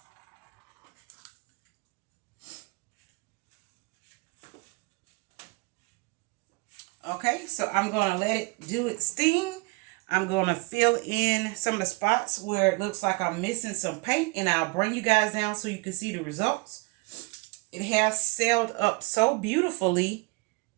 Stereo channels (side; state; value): left; quieter; 27.8 dB